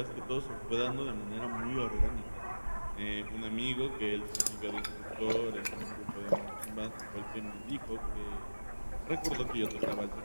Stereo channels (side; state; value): both; inverted; correlation -1.00